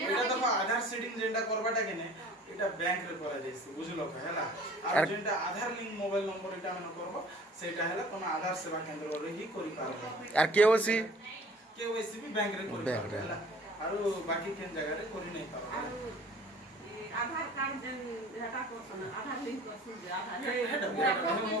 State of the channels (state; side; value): normal; both; correlation 0.48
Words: এটা দেখো আধার সিডিং যেটা করবাটা কেনে এটা ব্যাংক রে করা যাইছে বুঝলো হেলা আর যেটা আধার লিংক মোবাইল নম্বর এটা আমরা করব সেটা হেলা তুমি আধার সেবা কেন্দ্র রে হি করি পারবে আর কেওসি কেওয়াইসি भी बैंक रे करी पारबे हेला আর বাকি কেন জায়গা রে করি নাই পারবে आधार कार्ड जन हेटा कोसन आधार लिंक कोसन जे आधार এটা